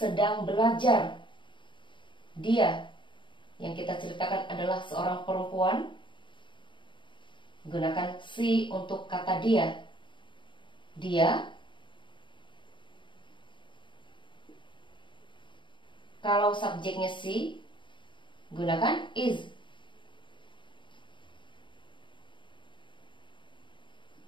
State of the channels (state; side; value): late; right; 0.23 ms